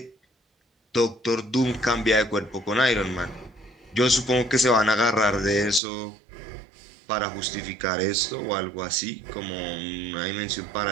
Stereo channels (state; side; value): drops out; left; at 5.8 s